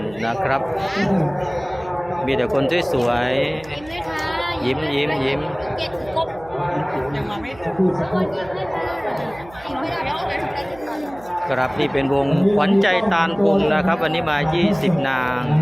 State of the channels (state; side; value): noise; right; hum, 21 dB below the sound